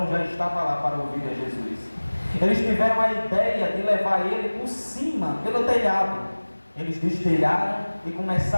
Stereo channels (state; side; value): inverted; both; correlation -1.00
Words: já estava lá para ouvir a Jesus. Eles tiveram a ideia de levar ele por cima, pelo telhado. Eles destelharam e